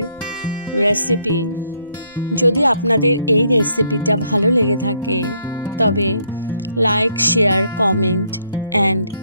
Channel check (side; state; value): both; inverted; correlation -0.70